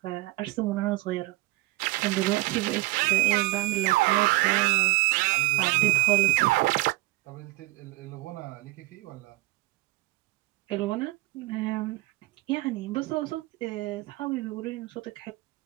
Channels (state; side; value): quieter; left; 21.0 dB